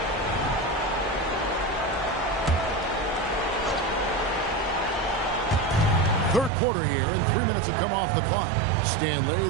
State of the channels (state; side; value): drops out; left; at 6.5 s